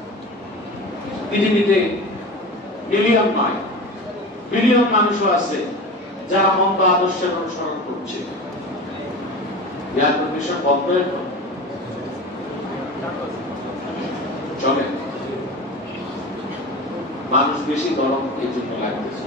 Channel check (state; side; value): normal; both; correlation 0.31